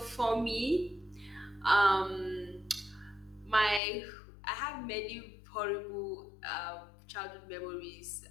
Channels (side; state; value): right; drops out; at 3.8 s